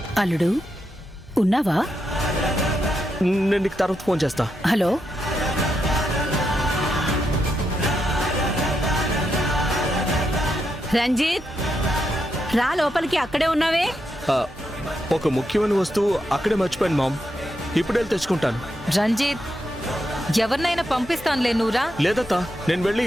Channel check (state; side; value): normal; both; correlation 0.83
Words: అల్లుడు ఉన్నావా? నేను నీకు తర్వాత ఫోన్ చేస్తా. హలో, రంజిత్, రా లోపలికి. అక్కడే ఉన్నావే? ఒక ముఖ్యమైన వస్తువు అక్కడే మర్చిపోయాను మామ్. ఇప్పుడు వెళ్ళి తెచ్చుకుంటాను. రంజిత్, ఎవరినైనా పంపిస్తానులే, నువ్వురా. లేదత్తా, నేను వెళ్ళి